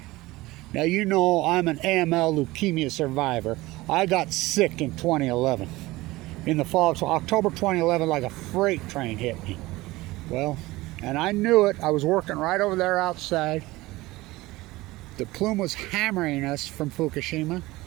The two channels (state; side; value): quieter; left; 19.5 dB